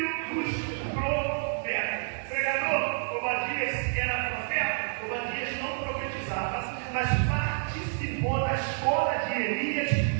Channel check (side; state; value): left; silent; 59 dB below the other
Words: dos profetas. Pregador, Obadias era profeta? Obadias não profetizava, mas participou da escola de Elias